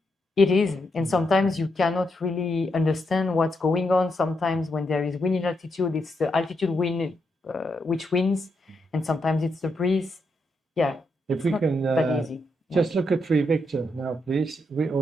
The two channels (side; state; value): both; normal; correlation 0.81